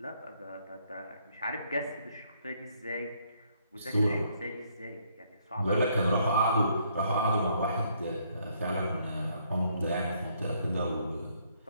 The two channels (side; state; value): both; inverted; correlation -0.69